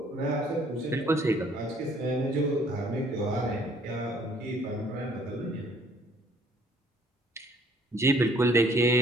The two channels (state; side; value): normal; both; correlation 0.59